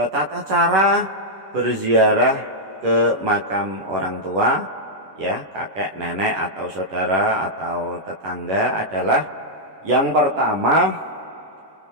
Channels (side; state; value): left; late; 10 ms